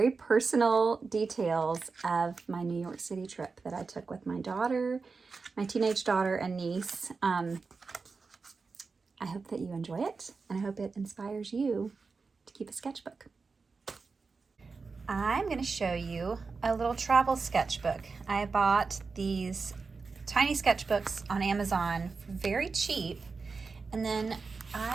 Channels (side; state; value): left; quieter; 4.5 dB